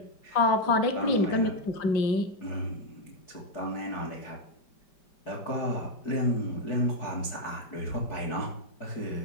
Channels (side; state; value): right; late; 5.1 ms